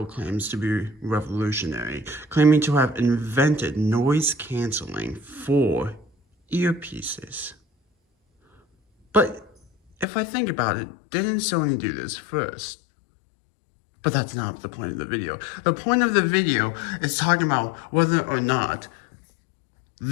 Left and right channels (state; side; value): drops out; right; at 10.1 s